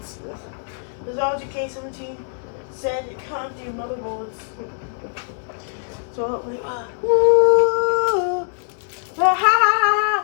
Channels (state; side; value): silent; right; digital silence